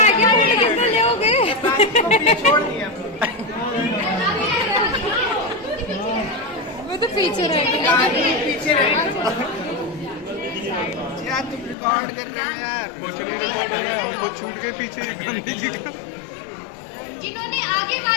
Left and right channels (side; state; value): right; drops out; at 11.8 s